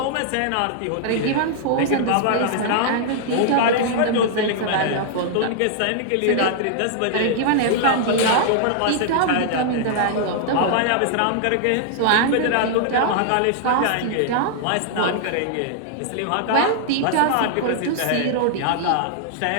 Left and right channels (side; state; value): both; different; correlation -0.01